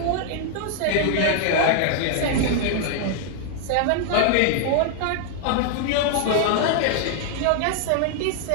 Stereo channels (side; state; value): both; different; correlation 0.00